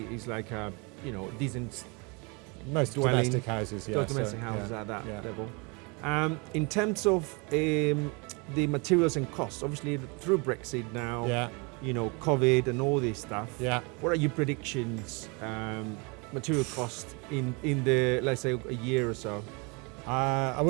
is like a decent. Most dwelling, domestic houses, domestic houses at that level. In terms of the materials and costs, obviously through Brexit now, COVID and all this stuff. Yeah. What are your predictions? Material cost in the, let's say, a year or so? I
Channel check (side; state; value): left; quieter; 30.4 dB